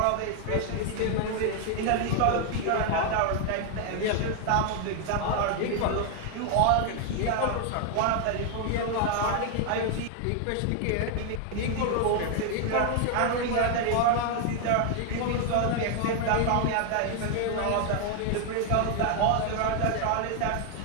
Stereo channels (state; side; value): different; both; correlation 0.00